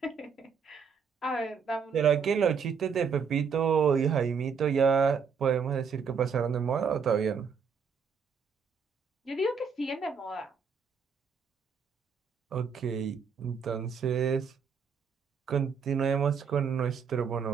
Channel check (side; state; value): left; quieter; 6.1 dB